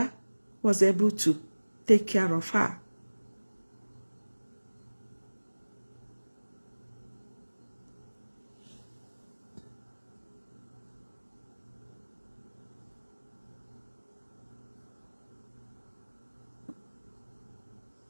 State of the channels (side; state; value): both; inverted; correlation -1.00